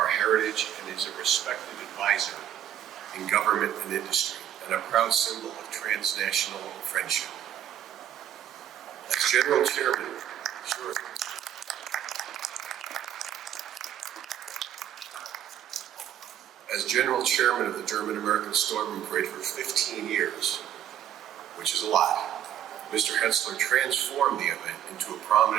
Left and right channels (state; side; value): quieter; left; 10.7 dB